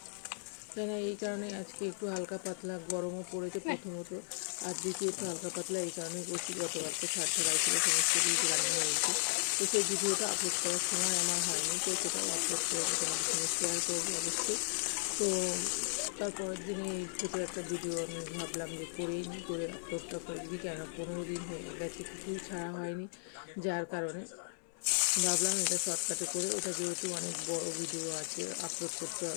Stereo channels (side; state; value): right; silent; 54 dB below the other